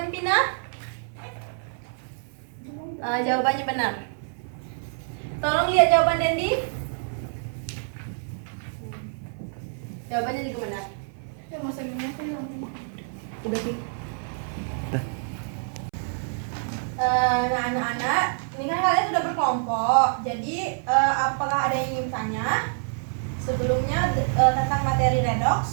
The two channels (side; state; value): left; silent; 61 dB below the other